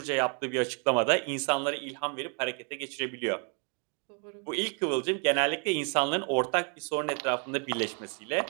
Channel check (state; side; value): quieter; left; 38.2 dB